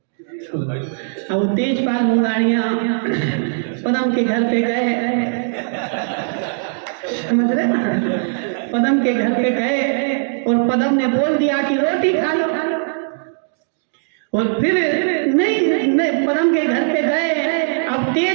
अब तेजपाल मुंगाड़िया पदम के घर पे गए, समझ रहे, पदम के घर पे गए और पदम ने बोल दिया कि रोटी खा लो, और फिर नहीं पदम के घर पे गए, अब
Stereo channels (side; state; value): left; silent; digital silence